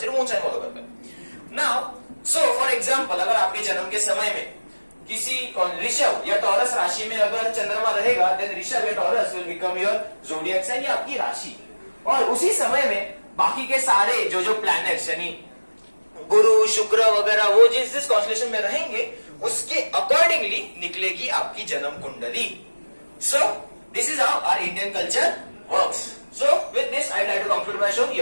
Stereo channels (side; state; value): both; inverted; correlation -1.00